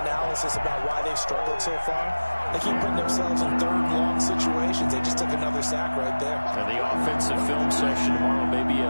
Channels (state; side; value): inverted; both; correlation -1.00